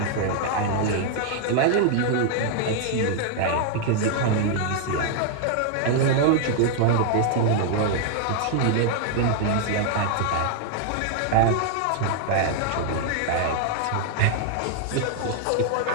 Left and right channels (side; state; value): both; different; correlation 0.00